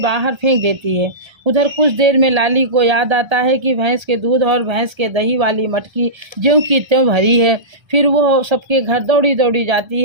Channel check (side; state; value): left; late; 1.3 ms